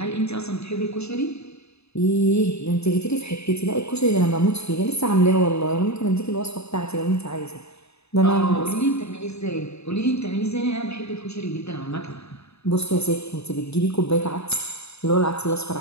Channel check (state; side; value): late; right; 0.79 ms